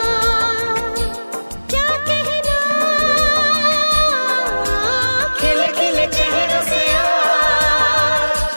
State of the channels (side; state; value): both; inverted; correlation -1.00